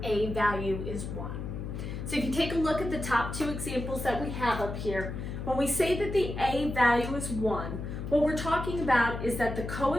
a value is 1. So if you take a look at the top two examples that we have up here, when we say that the a value is 1, what we're talking about is that the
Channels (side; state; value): left; noise; hum, 6 dB below the sound